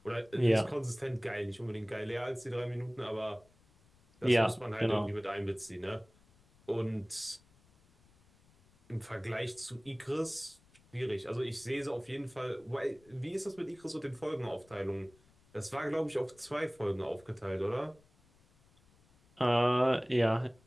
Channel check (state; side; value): noise; left; rumble, 30 dB below the sound